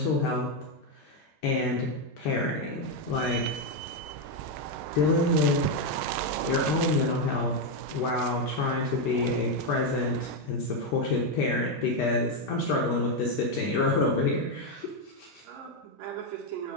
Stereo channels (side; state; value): both; normal; correlation 0.04